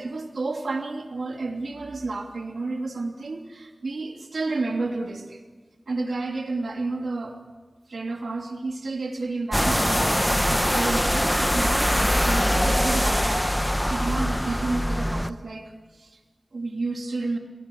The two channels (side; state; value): both; normal; correlation 0.98